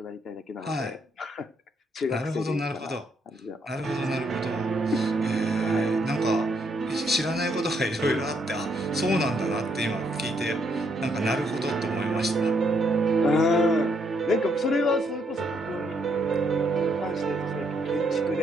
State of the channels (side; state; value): both; normal; correlation 0.73